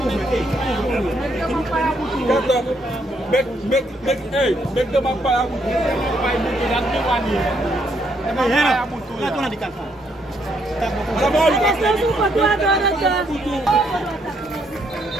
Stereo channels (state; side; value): normal; both; correlation 0.73